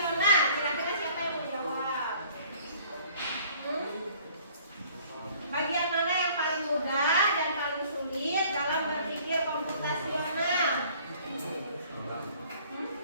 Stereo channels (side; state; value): both; inverted; correlation -0.55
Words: Kira-kira siapa yang mau jawab? Bagian mana yang paling mudah dan paling sulit dalam berpikir komputasional?